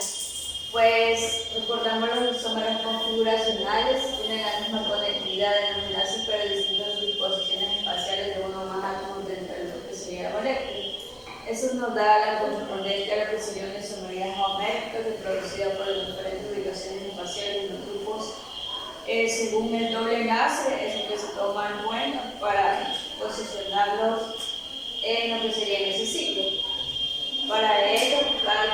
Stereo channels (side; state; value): both; identical; correlation 1.00